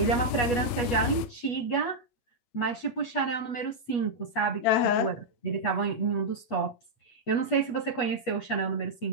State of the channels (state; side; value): late; right; 8.3 ms